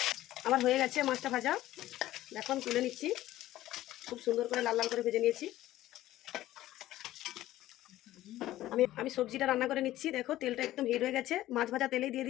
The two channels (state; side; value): quieter; right; 14.8 dB